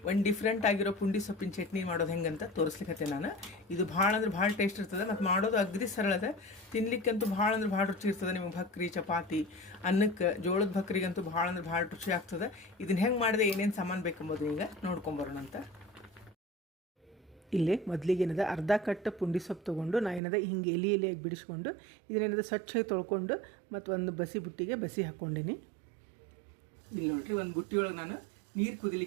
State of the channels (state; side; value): drops out; left; at 20.2 s